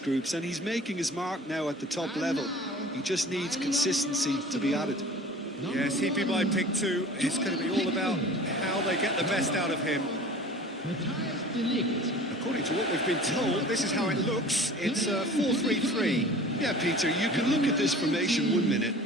groups and he's making his mark now at the top level. He just needs consistency to be added. Yes, he'd be my pick too. It's going to be all about how they get the best out of him. According to what we've been told, this is how it looks. It's 4-3-3. Yeah, Peter, you can look at this formation 1 minute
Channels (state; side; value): normal; both; correlation 0.43